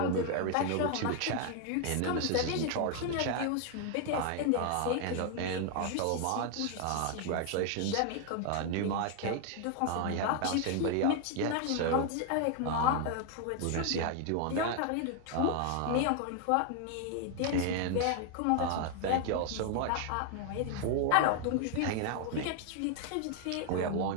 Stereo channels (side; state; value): both; different; correlation 0.00